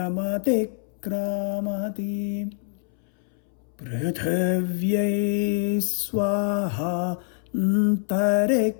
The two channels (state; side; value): silent; right; 62 dB below the other